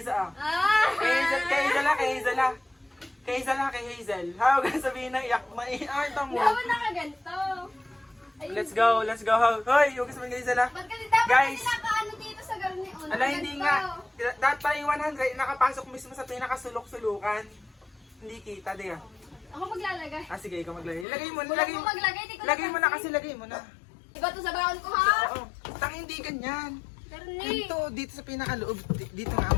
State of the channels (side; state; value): right; drops out; at 21.1 s